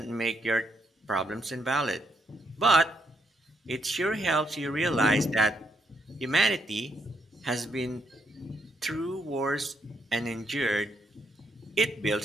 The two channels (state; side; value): normal; both; correlation 0.76